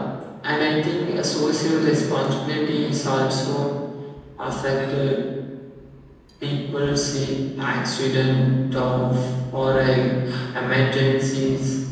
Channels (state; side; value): identical; both; correlation 1.00